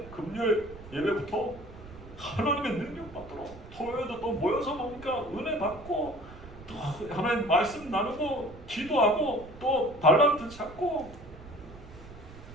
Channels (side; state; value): right; noise; rumble, 17 dB below the sound